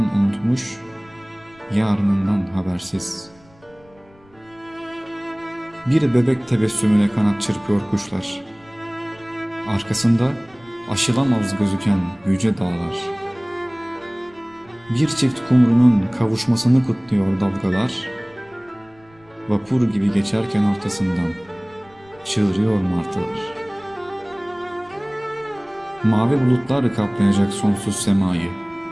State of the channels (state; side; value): noise; left; rumble, 29 dB below the sound